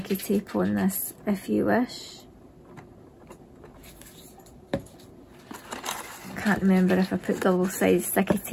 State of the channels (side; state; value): both; identical; correlation 1.00